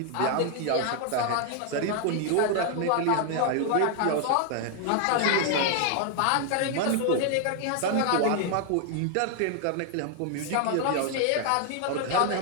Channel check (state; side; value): different; both; correlation 0.00